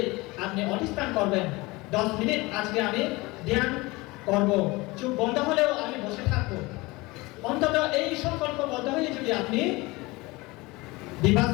আপনি অধিষ্ঠান করবেন 10 মিনিট আজকে আমি ধ্যান করব, চোখ বন্ধ হলেও আমি বসে থাকবো। অন্তত এই সংকল্পবদ্ধ হয়ে যদি আপনি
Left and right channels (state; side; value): quieter; right; 22.7 dB